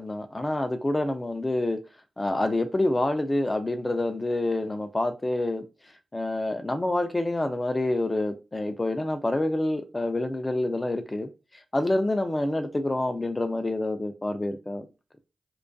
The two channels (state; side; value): normal; both; correlation 0.97